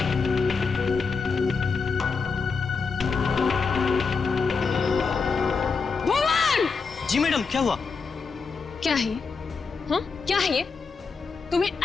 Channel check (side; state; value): right; quieter; 4.9 dB